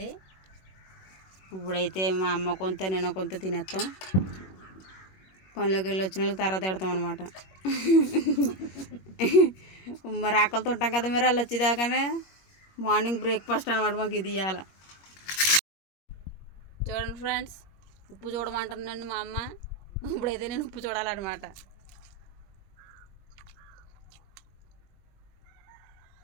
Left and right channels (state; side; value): late; right; 21 ms